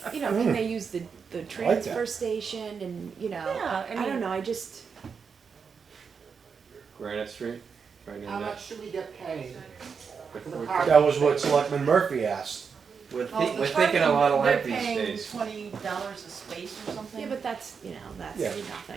You know, can they use the transfer station and, you know, Yeah, I I don't mean- know, I just, Granite Street, right in How there. much should we get paid? That was what Selectman Murphy asked. We're, Well, the we're thinking a parking, lot alike they're these paying days. $20 a space or something? yeah, but that's, you know, that's Yeah.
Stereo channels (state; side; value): quieter; left; 5.9 dB